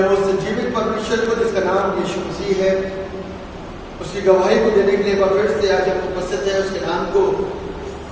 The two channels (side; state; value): both; identical; correlation 1.00